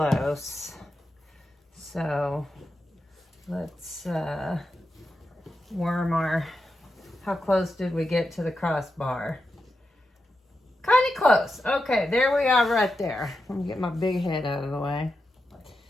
So let's worm our, how close did we get to the crossbar? Kind of close. Okay, there we are right there. Let me get my big head out of the way.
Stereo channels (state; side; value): normal; both; correlation 0.88